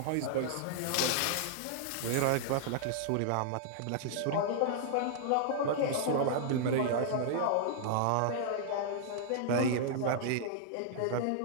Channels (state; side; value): different; both; correlation -0.01